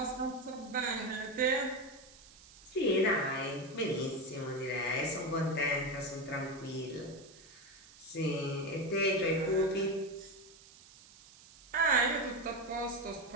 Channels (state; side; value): noise; right; hiss, 22 dB below the sound